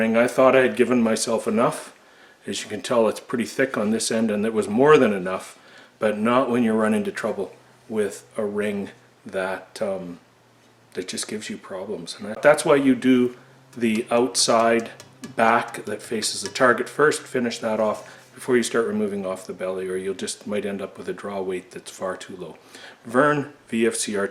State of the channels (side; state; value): both; identical; correlation 1.00